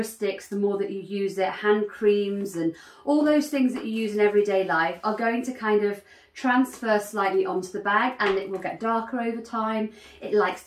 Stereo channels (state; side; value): identical; both; correlation 1.00